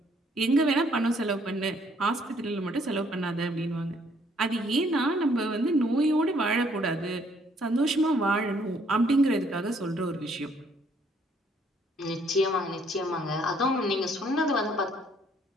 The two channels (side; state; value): both; normal; correlation 0.65